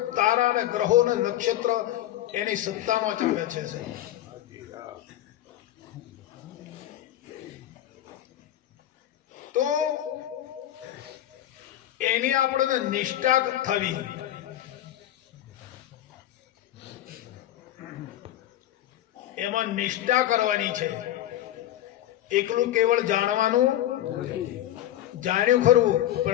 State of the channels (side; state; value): right; quieter; 13.1 dB